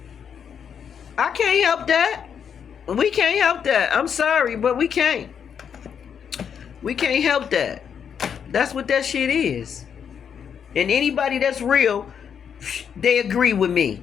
I can't help that. We can't help that. I'm sorry, but we can't. We can't help that. That's what that shit is. And anybody that's real, they agree with me.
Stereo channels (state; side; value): quieter; right; 7.6 dB